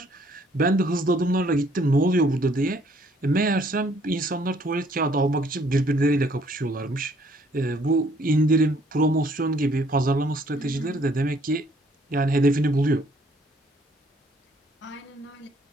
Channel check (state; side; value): normal; both; correlation 0.63